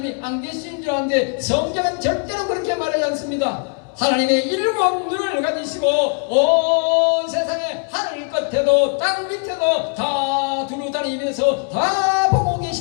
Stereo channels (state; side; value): quieter; right; 39.2 dB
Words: 안 계시는 줄 아는데 성경은 절대로 그렇게 말하지 않습니다. 하나님의 일곱 눈을 가지시고 온 세상에 하늘 끝에도 땅 밑에도 다 두루 다니면서 다 보고